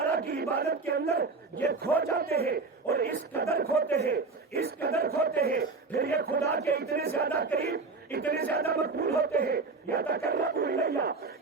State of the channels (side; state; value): left; quieter; 4.1 dB